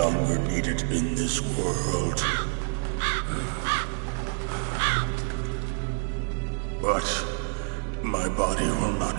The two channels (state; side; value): silent; left; digital silence